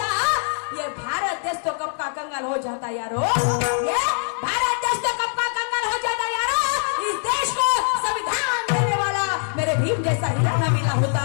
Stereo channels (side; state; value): right; silent; 63 dB below the other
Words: ये भारत देश तो कब का कंगाल हो जाता यारो, ये भारत देश तो कब का कंगाल हो जाता यारो. इस देश को संविधान देने वाला मेरे भीम जैसा हीरा ना मिला होता,